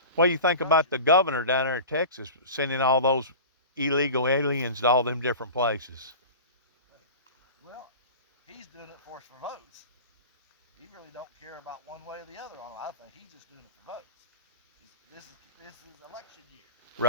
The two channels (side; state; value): both; inverted; correlation -0.35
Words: What do you think about the governor down there in Texas sending all those illegal aliens to all them different places? Well, he's doing it for us for votes. He really don't care about one way or the other on it. I think he's just doing it for votes. This is election year.